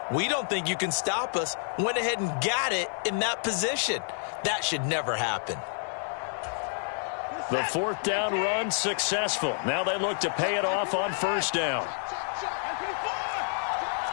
we don't think you can stop us. Went ahead and got it in that position. That should never happen. The 4th down run successful. Now they look to pay it off on first down.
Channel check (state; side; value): silent; right; 59 dB below the other